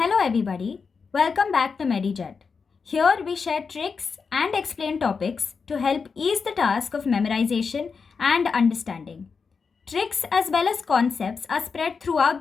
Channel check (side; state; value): right; quieter; 5.3 dB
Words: everybody, welcome back to MediJet. Here we share tricks and explain topics to help ease the task of memorization and understanding. Tricks as well as concepts are spread